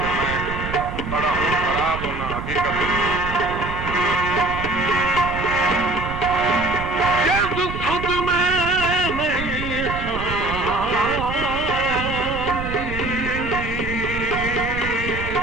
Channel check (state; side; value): noise; right; rumble, 7 dB below the sound